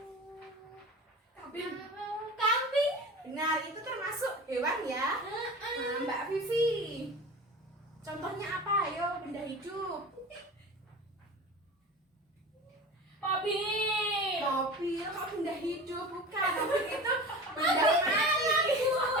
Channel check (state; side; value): normal; both; correlation 0.34